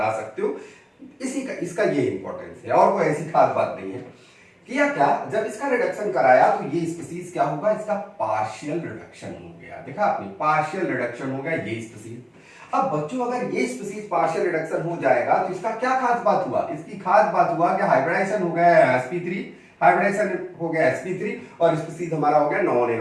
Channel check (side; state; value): both; identical; correlation 1.00